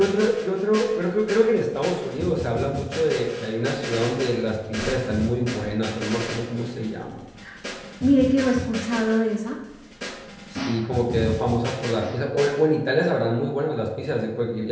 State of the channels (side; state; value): both; identical; correlation 1.00